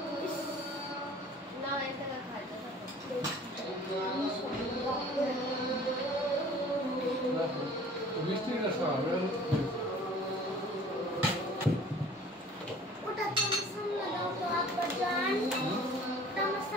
না, এটা খাইতে মিষ্টি না সব ওটা তো সামনে দাও তো আব্বা জান, ওটা আমার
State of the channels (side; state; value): both; normal; correlation 0.48